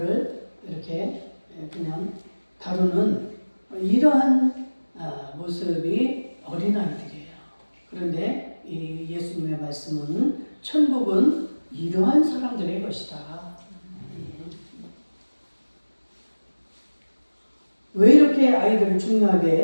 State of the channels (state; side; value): inverted; both; correlation -1.00